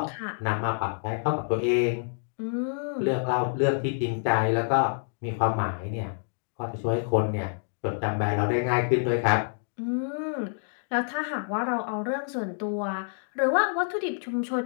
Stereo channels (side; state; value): right; silent; digital silence